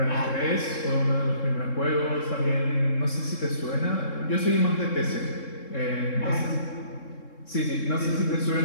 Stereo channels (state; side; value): late; right; 3.7 ms